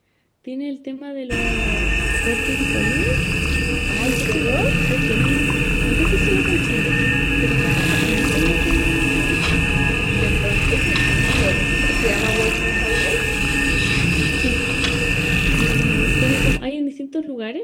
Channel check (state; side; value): identical; both; correlation 1.00